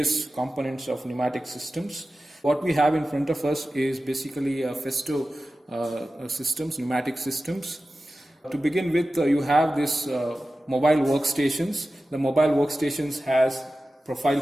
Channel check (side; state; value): both; normal; correlation 0.94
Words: components of pneumatic systems. What we have in front of us is basically a Festo systems, pneumatic systems. To begin with, you have this mobile workstations. The mobile workstations has profile